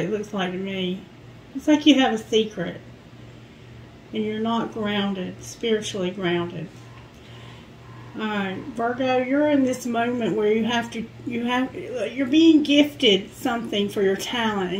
looks like to me. It's like you have a secret, and you're not grounded, spiritually grounded. Alright, Virgo, you're in this moment where you're being gifted something for your talent,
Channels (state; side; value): identical; both; correlation 1.00